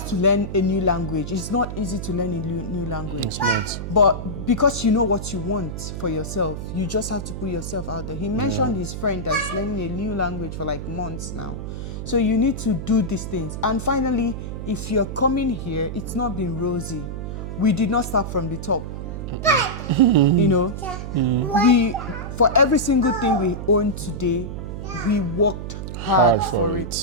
to learn a new language. It's not easy to learn a new language. That's right. But because you know what you want for yourself, you just have to put yourself out there. He mentioned his friend that's learning a new language for months now. So you need to do these things. And finally, if you're coming here, it's not been rosy. We did not start from the top. We for every single thing we own today, we worked hard for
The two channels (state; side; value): noise; right; hum, 7 dB below the sound